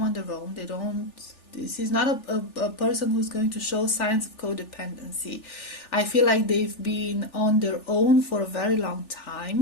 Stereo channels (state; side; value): late; right; 3.4 ms